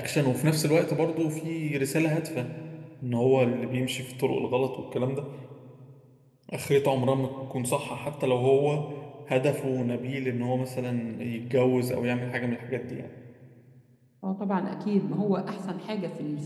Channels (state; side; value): identical; both; correlation 1.00